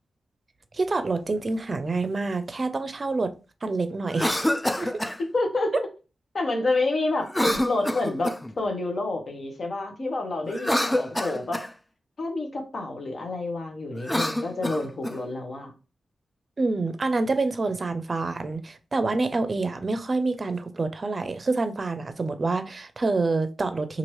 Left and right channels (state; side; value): normal; both; correlation 0.92